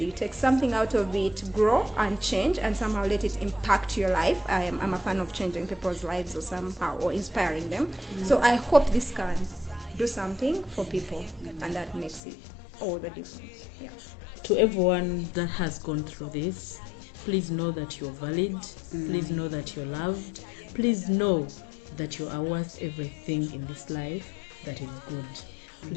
you take something out of it, grow and change, and somehow let it impact your life. I'm a fan of changing people's lives or somehow, or inspiring them. So I hope this can do something for people, and that makes it all the difference. Yeah. To everyone that has gone through this, please know that you're valid. Please know that you're loved. Please know that you are worth everything in this life that is good.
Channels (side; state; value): right; drops out; at 12.2 s